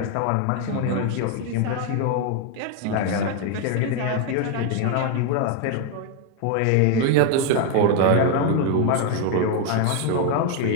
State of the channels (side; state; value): both; different; correlation 0.01